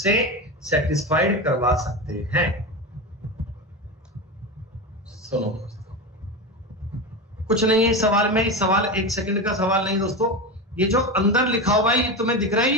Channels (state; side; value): normal; both; correlation 0.21